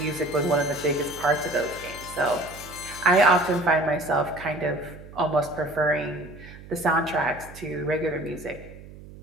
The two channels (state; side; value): noise; right; hum, 17 dB below the sound